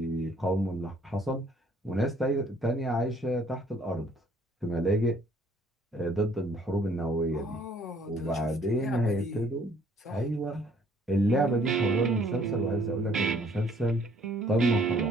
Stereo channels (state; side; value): normal; both; correlation 0.61